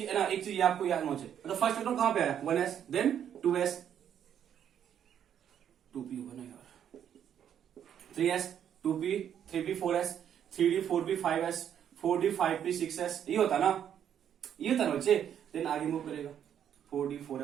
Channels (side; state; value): left; quieter; 9.3 dB